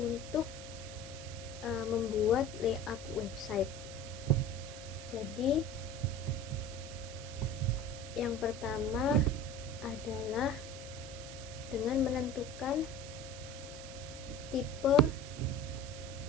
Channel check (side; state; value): right; noise; hiss, 13 dB below the sound